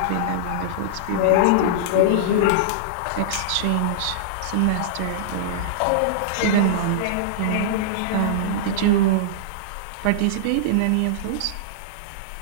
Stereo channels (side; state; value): both; different; correlation -0.02